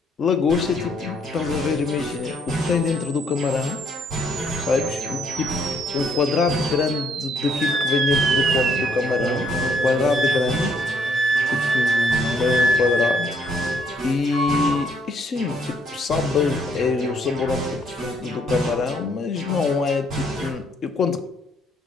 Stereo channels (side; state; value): both; normal; correlation 0.68